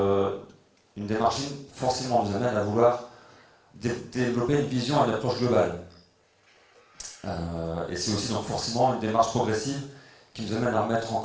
une démarche ligne forcément nous amène à vouloir développer une vision et une approche globale. Et c'est aussi donc forcément une démarche progressive qui nous amène à remettre en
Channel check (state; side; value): identical; both; correlation 1.00